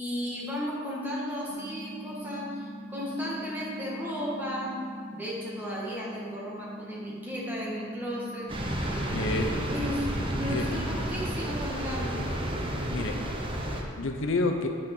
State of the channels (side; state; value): both; normal; correlation 0.55